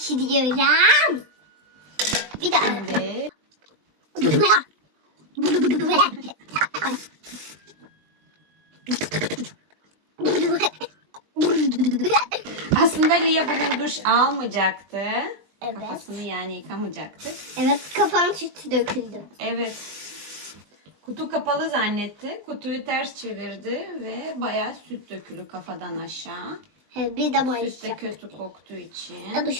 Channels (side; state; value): left; late; 20 ms